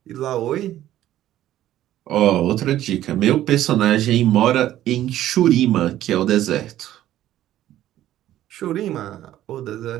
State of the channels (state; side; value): quieter; left; 13.1 dB